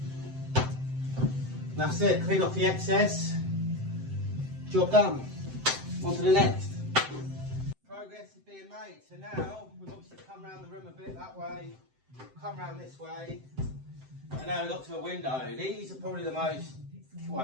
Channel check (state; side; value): late; left; 7.7 ms